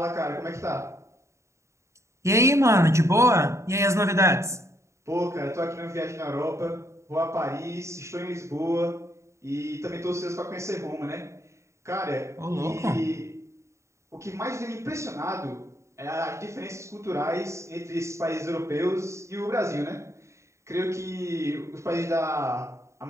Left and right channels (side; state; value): left; late; 0.14 ms